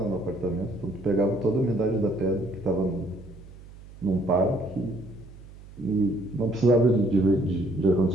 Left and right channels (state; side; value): noise; right; hum, 19 dB below the sound